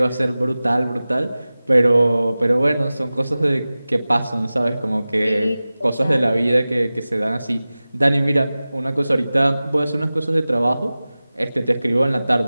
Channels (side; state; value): both; inverted; correlation -0.97